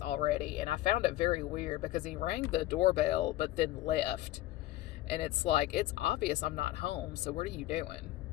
already. And I found it very weird because he rang the doorbell but then left. And it's like, it's obvious I'm not home, so what are you doing?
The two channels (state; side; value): quieter; right; 15.9 dB